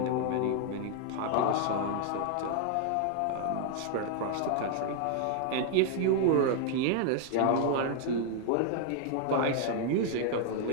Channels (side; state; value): both; different; correlation 0.00